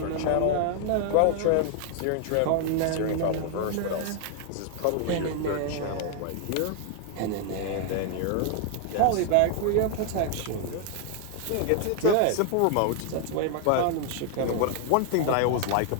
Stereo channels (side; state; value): both; different; correlation 0.00